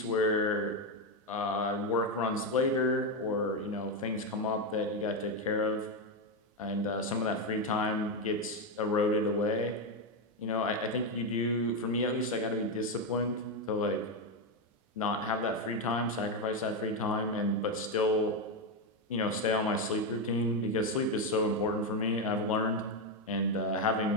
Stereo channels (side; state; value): both; normal; correlation 0.07